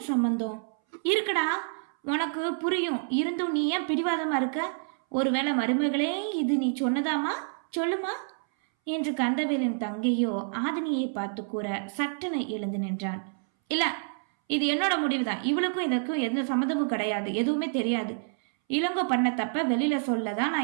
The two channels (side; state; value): left; silent; 59 dB below the other